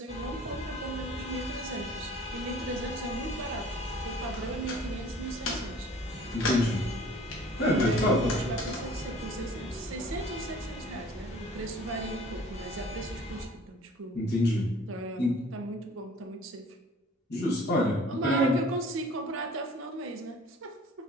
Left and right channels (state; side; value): normal; both; correlation 0.50